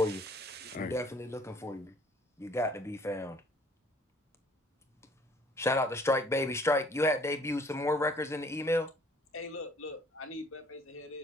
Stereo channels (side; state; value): both; normal; correlation 0.57